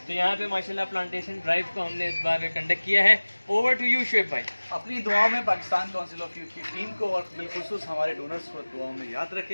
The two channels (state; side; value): inverted; both; correlation -1.00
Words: तो यहाँ पे माशाल्लाह प्लांटेशन ड्राइव को हमने इस बार कंडक्ट किया है। ओवर टू यू शुएब भाई। अपनी दुआओं में पाकिस्तान काउंसिल ऑफ यूथ की टीम को और बिलखुसूस हमारे डोनर्स को दुआओं में याद